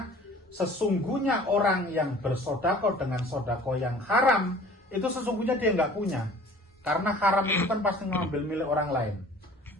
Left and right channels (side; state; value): both; normal; correlation 0.48